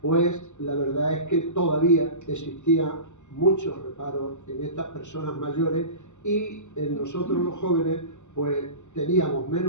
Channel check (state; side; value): late; right; 0.84 ms